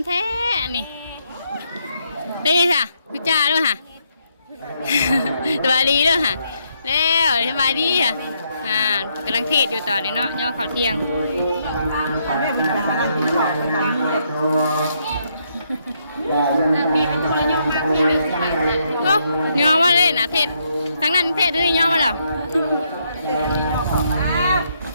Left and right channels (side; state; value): both; inverted; correlation -0.75